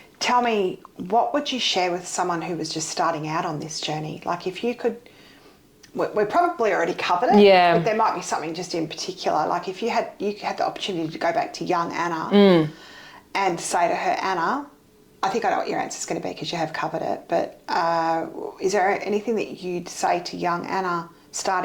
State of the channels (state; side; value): identical; both; correlation 1.00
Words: Tell me, what would you share with someone who was just starting out on this journey? Like, if you could, we probably already covered it, but there might be something just in particular. Like, if you had the opportunity to go back to young Anna and say to her, Anna, I think I know what your answer is going to be because you have covered it, but is there anything that you'd say to young Anna